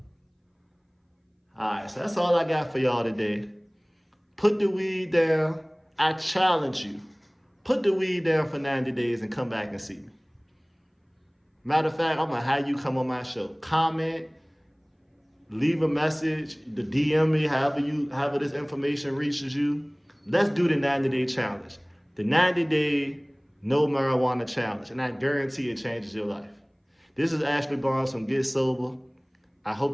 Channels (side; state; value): both; identical; correlation 1.00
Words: All right, so that's all I got for y'all today. Put the weed down. I challenge you. Put the weed down for 90 days and come back and see me. Matter of fact, I'm gonna have you come on my show. Comment, leave a message, the DM me, however this information reaches you. Let's do the 90-day challenge. The 90-day no marijuana challenge. And I guarantee it changes your life. This is Ashley Barnes from Get Sober. I